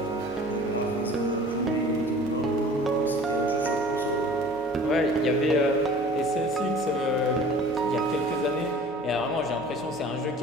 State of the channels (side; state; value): both; normal; correlation 0.46